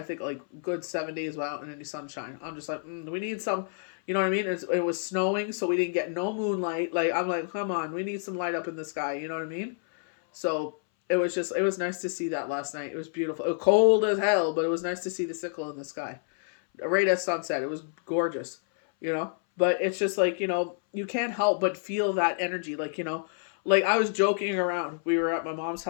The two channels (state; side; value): silent; right; 59 dB below the other